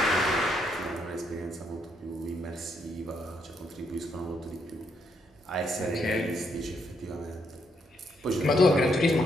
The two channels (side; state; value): both; normal; correlation 0.76